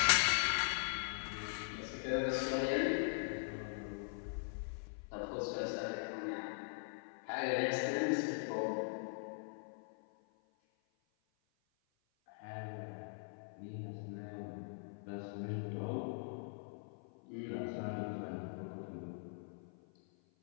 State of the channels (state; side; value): silent; right; 50 dB below the other